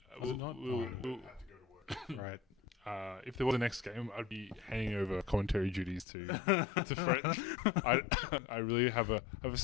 Was it not? Right. If there was a next game, I'd be handing over commentary duties to Fred. I really have a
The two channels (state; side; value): drops out; right; at 6.1 s